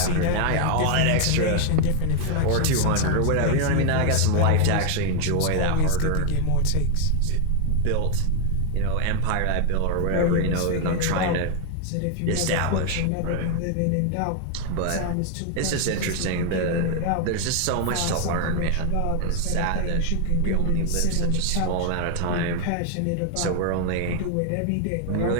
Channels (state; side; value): different; both; correlation 0.00